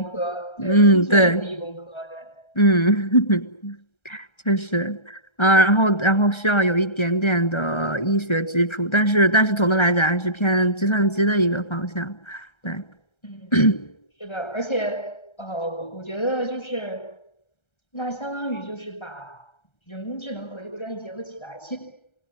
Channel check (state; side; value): late; right; 1.3 ms